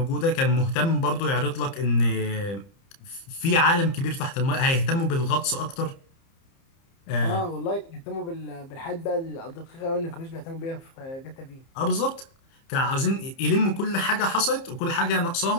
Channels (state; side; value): late; right; 30 ms